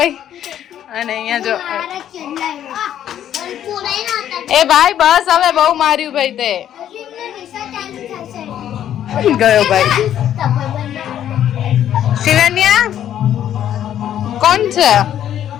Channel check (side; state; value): right; quieter; 10.7 dB